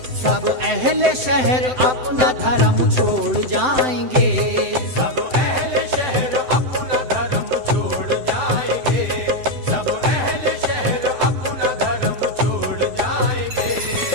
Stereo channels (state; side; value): late; left; 7.8 ms